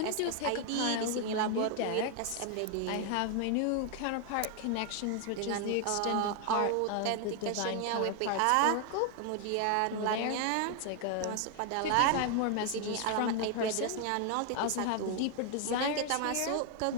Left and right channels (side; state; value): both; different; correlation 0.00